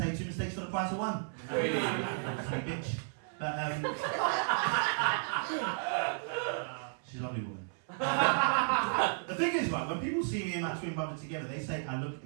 2 mistakes for the price of 1. Sweet bitch. But she's a lovely woman. The thing is, right, when people see me and my twin brother together, they say I look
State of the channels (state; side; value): silent; left; 55 dB below the other